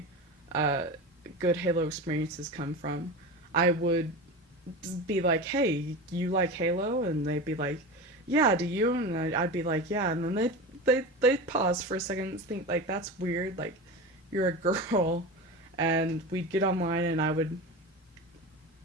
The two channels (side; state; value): both; normal; correlation 0.27